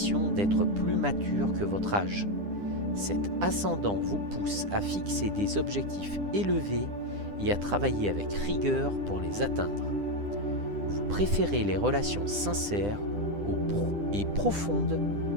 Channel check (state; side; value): late; left; 10 ms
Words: d'être plus mature que votre âge. Cet ascendant vous pousse à fixer des objectifs élevés et à travailler avec rigueur pour les atteindre. Vous préférez les relations sincères et profondes